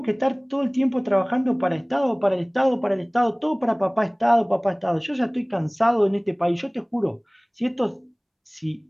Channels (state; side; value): identical; both; correlation 1.00